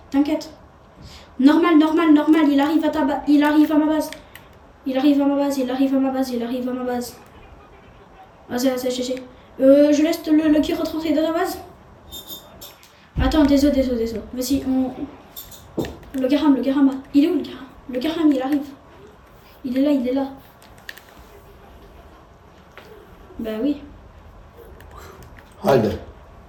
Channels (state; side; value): identical; both; correlation 1.00